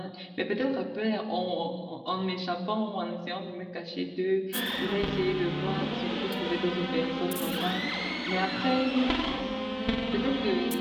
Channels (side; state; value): both; identical; correlation 1.00